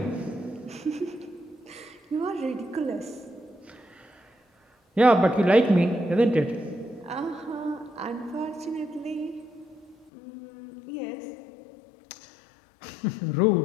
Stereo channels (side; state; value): right; drops out; at 10.1 s